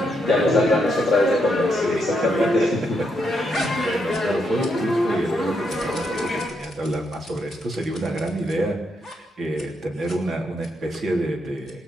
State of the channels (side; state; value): both; normal; correlation 0.79